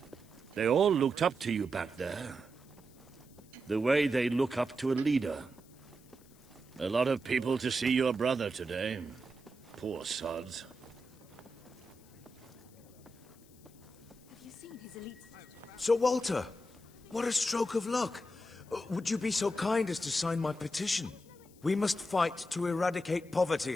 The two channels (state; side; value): noise; left; hiss, 27 dB below the sound